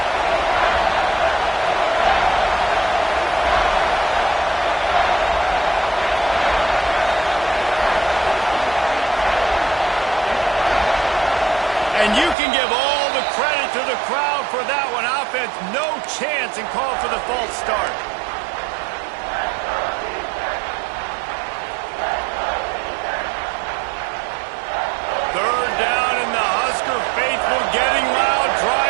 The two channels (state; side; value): drops out; left; at 12.4 s